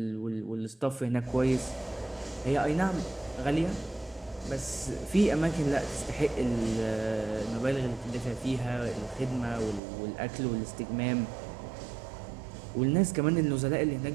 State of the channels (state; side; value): drops out; left; at 9.8 s